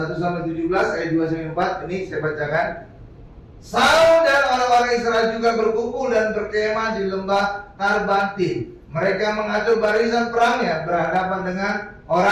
Samuel 17 ayat 2 sampai 4 ini saya bacakan. Saul dan orang-orang Israel juga berkumpul dan berkemah di lembah Tarbantin. Mereka mengatur barisan perangnya berhadapan dengan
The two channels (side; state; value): both; identical; correlation 1.00